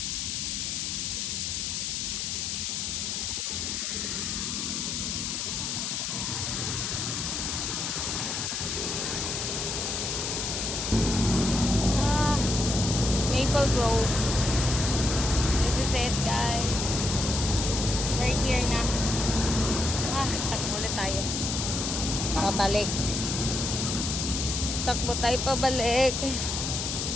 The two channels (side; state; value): left; noise; hiss, 2 dB below the sound